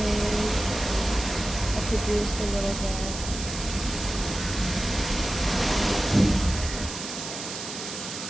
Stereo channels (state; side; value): noise; right; hiss, 8 dB below the sound